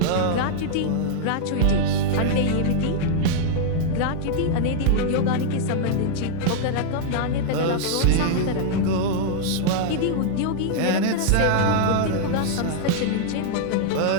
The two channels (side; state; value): both; different; correlation -0.01